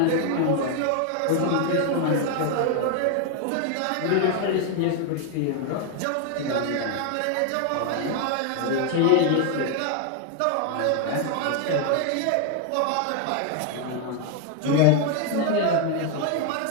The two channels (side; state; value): both; different; correlation 0.01